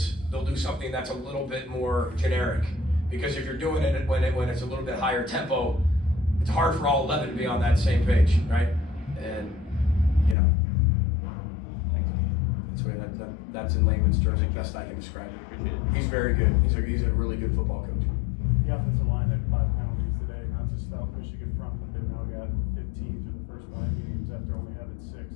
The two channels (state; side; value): drops out; right; at 10.4 s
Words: They'll do something that's a little bit more generic. Because if you're doing it when it's a little bit higher tempo, it's hard for all 11 to be on that same page, right? And, you know, that's in layman's terms the best I can describe it. He's very good. He's a really good football coach. The offensive line had 5 penalties today. Not just stout Michigan front, but they've now got 15 through the first 5 games after only having